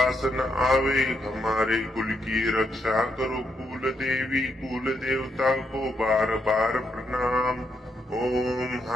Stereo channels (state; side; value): normal; both; correlation 0.79